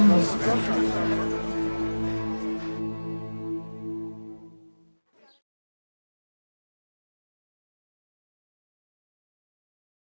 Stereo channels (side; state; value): both; inverted; correlation -1.00